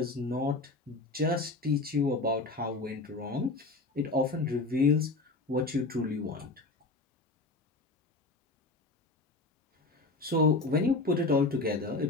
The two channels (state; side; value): quieter; right; 3.4 dB